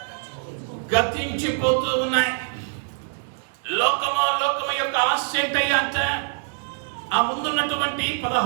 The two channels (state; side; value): silent; left; digital silence